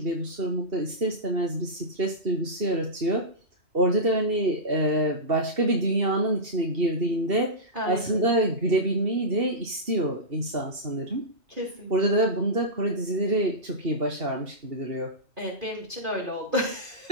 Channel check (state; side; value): late; left; 2.7 ms